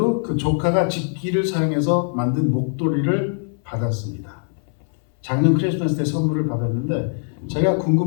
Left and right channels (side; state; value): right; silent; 65 dB below the other